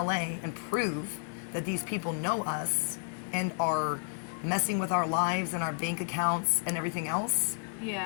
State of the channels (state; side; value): silent; right; 57 dB below the other